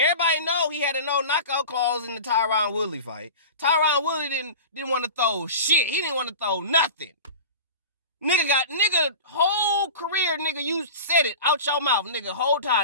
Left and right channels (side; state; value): both; inverted; correlation -0.33